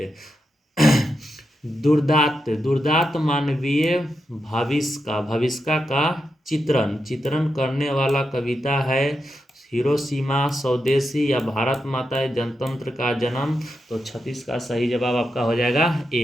दुर्दांत, दुर्दांत मानवीय भविष्य का चित्रण चित्रण करने वाला कविता है हिरोशिमा, स्वदेशी या भारत माता जनतंत्र का जन्म। तो 36 का सही जवाब आपका हो जाएगा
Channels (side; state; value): both; normal; correlation 0.86